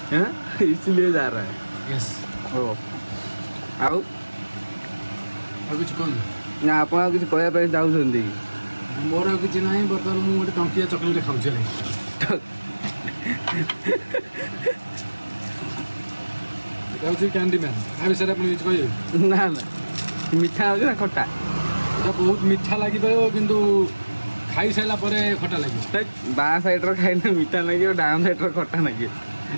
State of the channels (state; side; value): inverted; both; correlation -1.00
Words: इसलिए जा रहा है। यस। ओ ଆଉ କିଛି କୁହନ୍ତୁ ନା, ଆପଣ ଆଉ କିଛି କହିବା ପାଇଁ ଚାହୁଁଛନ୍ତି? ମୋର ଆଉ କିଛି ନାହିଁ। ବର୍ତ୍ତମାନ ମୁଁ ଗୋଟେ ଟଙ୍କିଆ ଚକୋଲେଟ୍ ଖାଉଛି, ହେଲା। এটা হচ্ছে ক্যান্ডি ম্যান। ତା ବିଷୟରେ ଆପଣ କିଛି କହିବେ? ନା ମିଠା ହେଉଛି ନା ଖଟା? এটা ବହୁତ ମିଠା ଲାଗିପାରିବ, କିନ୍ତୁ ଖାଇସାରିଲା ପରେ ଖଟା ଲାଗିବ। ବାଁ ସାଇଡ଼୍ର ଖାଇଲେ ମିଠା ଲାଗିବ, ଡାହାଣ ସାଇଡ଼୍ର ଖଟା ଲାଗିବ।